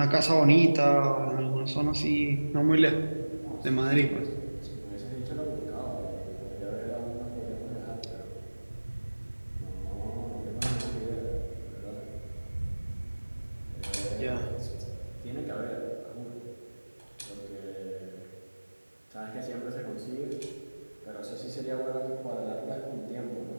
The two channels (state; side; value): inverted; both; correlation -1.00